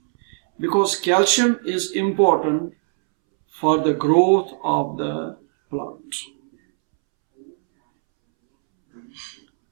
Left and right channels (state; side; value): silent; left; 65 dB below the other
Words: Because calcium is important for the growth of the plant.